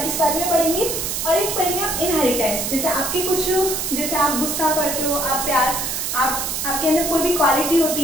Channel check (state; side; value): noise; right; hiss, 2 dB below the sound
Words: इस बारे में पढ़ेंगे। और एक पढ़ेंगे आप इनहेरिटेंस, जैसे आपके कुछ, जैसे आप गुस्सा करते हो, आप प्यार, आपके अंदर कोई भी क्वालिटी